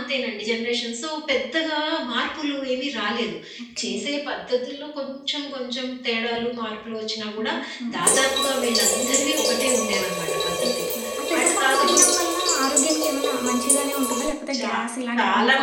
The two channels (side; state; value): both; identical; correlation 1.00